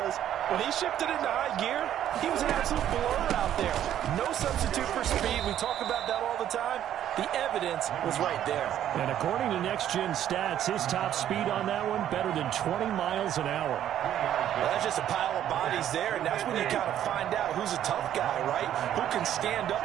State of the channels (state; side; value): quieter; left; 11.1 dB